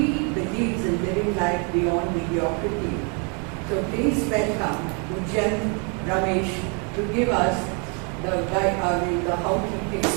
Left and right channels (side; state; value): left; quieter; 35.9 dB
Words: believes in living life beyond mediocrity. So please welcome Ujyant Ramesh to give us the how he